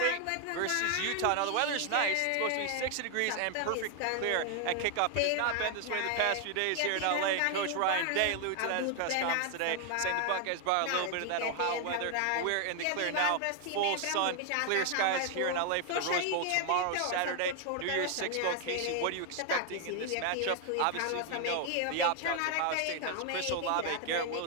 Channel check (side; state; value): both; different; correlation 0.00